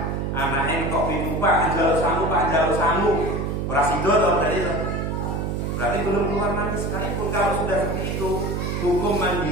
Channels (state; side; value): noise; right; hum, 1 dB below the sound